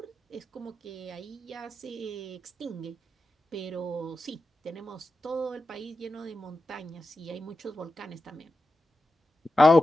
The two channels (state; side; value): normal; both; correlation 0.91